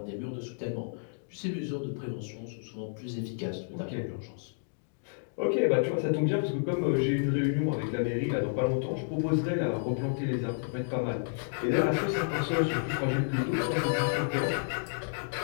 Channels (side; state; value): right; silent; digital silence